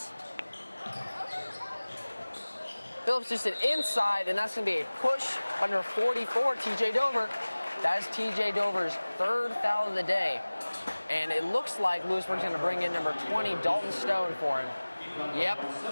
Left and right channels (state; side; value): inverted; both; correlation -1.00